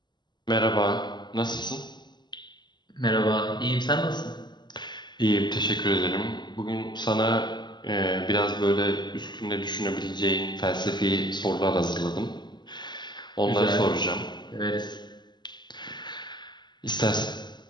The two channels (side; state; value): right; late; 0.21 ms